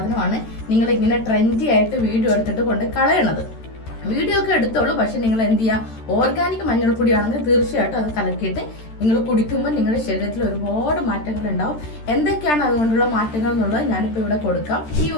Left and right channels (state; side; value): late; right; 13 ms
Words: നിങ്ങൾ ഇങ്ങനെ ട്രെൻഡി ആയിട്ട് വീഡിയോ എടുത്തിട്ട് കൊണ്ട് കളയണത്. വീഡിയോ ഒക്കെ എടുത്തോളൂ, പക്ഷെ നിങ്ങൾ എന്ത് ചെയ്യുക, ഓർഗാനിക് മഞ്ഞൾപ്പൊടിയാണെങ്കിൽ തീർച്ചയായിട്ടും അത് കലക്കിയിട്ട് നിങ്ങൾ കുടിക്കുമ്പോൾ നിങ്ങളുടെ ശരീരത്തിൽ ഒരുപാട് മാറ്റങ്ങൾ ഉണ്ടാവും. എന്തൊക്കെയാണ് അതുകൊണ്ടുള്ള മാറ്റങ്ങൾ എന്നുള്ളത് ഞാനിപ്പോൾ ഇവിടെ കൊടുക്കാം. ഈ